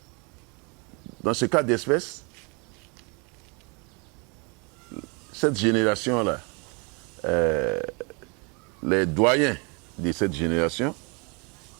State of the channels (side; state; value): left; quieter; 32.0 dB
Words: Dans ce cas d'espèce, cette génération-là, les doyens de cette génération